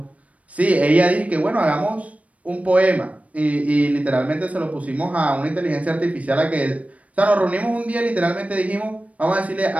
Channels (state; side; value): late; left; 0.067 ms